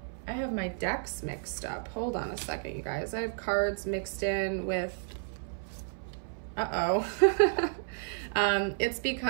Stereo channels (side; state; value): left; silent; 57 dB below the other